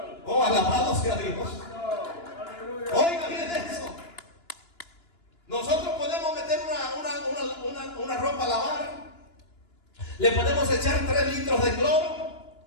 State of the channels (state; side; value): late; right; 2.9 ms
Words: Oh, alabado sea Dios. Oiga bien eso. Nosotros podemos meter una ropa a lavar, le podemos echar 3 litros de